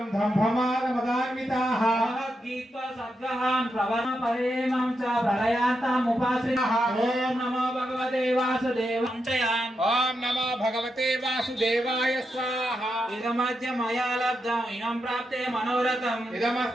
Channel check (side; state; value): both; normal; correlation 0.85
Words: దంభమానమదాన్వితాః. భగవద్గీతా సద్గ్రహాన్ ప్రవణ పరేమం చ ప్రళయాంతముపాశ్రితః. ఓం నమో భగవతే వాసుదేవాయ. ఓం నమో భగవతే వాసుదేవాయ స్వాహా. ఇదమద్య మయా లబ్ధం ఇనం ప్రాప్తే మనోరథం.